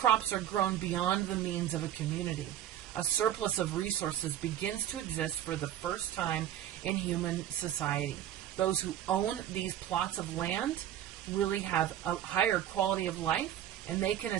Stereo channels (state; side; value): quieter; left; 11.5 dB